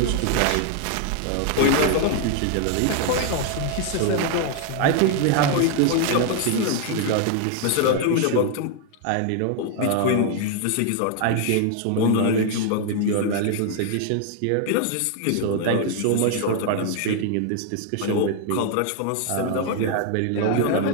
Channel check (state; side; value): different; both; correlation 0.00